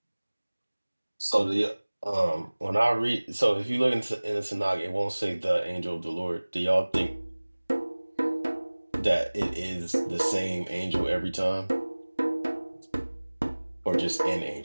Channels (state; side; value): inverted; both; correlation -1.00